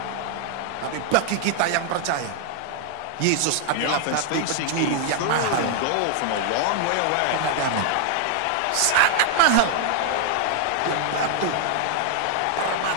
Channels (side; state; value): both; different; correlation 0.00